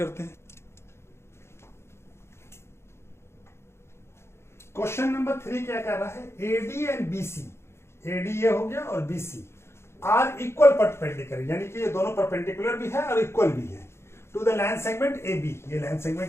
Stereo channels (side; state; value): right; late; 0.12 ms